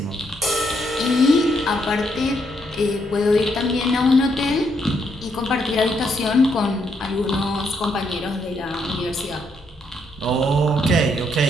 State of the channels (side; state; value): both; normal; correlation 0.75